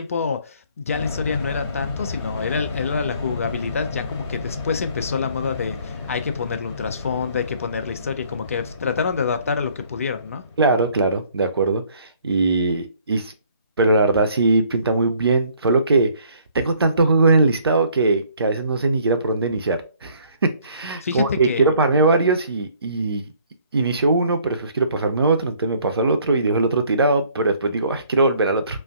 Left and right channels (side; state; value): both; inverted; correlation -0.60